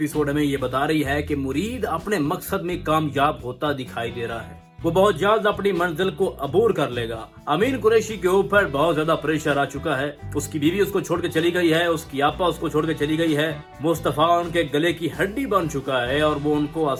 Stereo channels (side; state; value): both; identical; correlation 1.00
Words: हमें ये बता रही है कि मुरीद अपने मकसद में कामयाब होता दिखाई दे रहा है। वो बहुत जल्द अपनी मंजिल को अबूर कर लेगा। अमीन कुरैशी के ऊपर बहुत ज्यादा प्रेशर आ चुका है। उसकी बीवी उसको छोड़ के चली गई है, उसकी आपा उसको छोड़ के चली गई है। मुस्तफा उनके गले की हड्डी बन चुका है और वो उनको